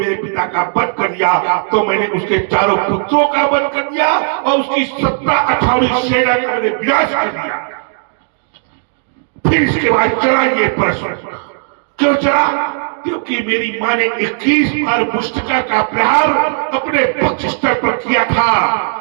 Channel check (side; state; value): left; silent; digital silence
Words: पिता का वध कर दिया तो मैंने उसके चारों पुत्रों का वध कर दिया और उसकी 17-18 सेना का मैंने विनाश कर दिया। फिर इसके बाद चला ये प्रश्न, क्यों चला? क्योंकि मेरी माँ ने 21 बार मुष्टिका का प्रहार अपने पक्ष स्तर पर किया था।